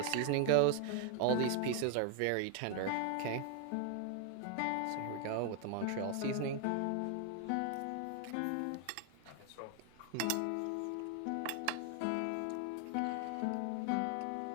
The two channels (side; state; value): both; different; correlation 0.00